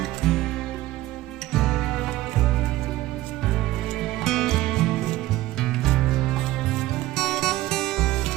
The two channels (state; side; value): quieter; left; 16.2 dB